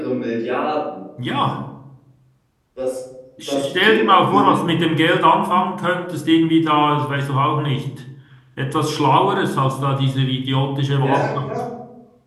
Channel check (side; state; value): both; identical; correlation 1.00